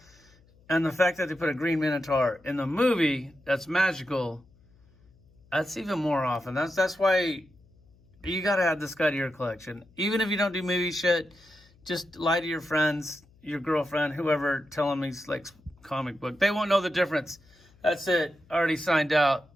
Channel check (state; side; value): noise; left; hum, 30 dB below the sound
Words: And the fact that they put a green Minotaur in the movie that's magical, that's even more awesome. That's why you got to add this guy to your collection. Even if you don't do movie shit, just lie to your friends, your girlfriend, whoever, tell them he's like comic book. They won't know the difference. That's it. Already signed out.